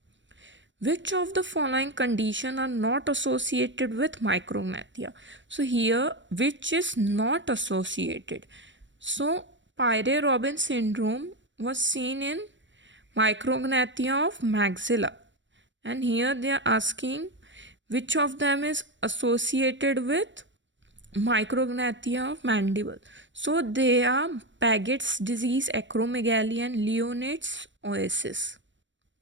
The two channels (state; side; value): late; left; 0.54 ms